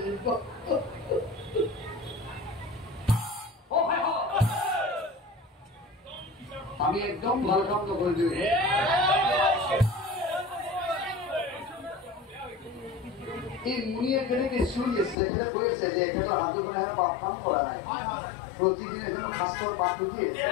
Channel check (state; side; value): drops out; right; at 15.2 s